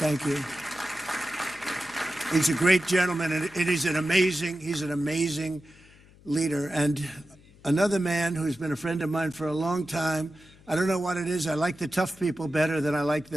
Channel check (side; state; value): left; noise; hum, 25 dB below the sound